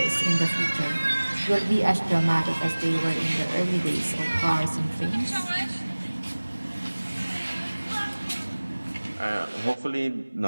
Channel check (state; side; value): inverted; both; correlation -1.00